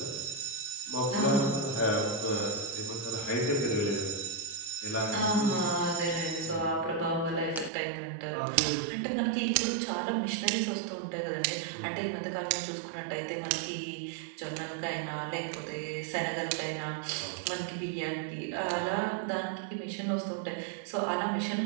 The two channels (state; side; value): drops out; left; at 7.7 s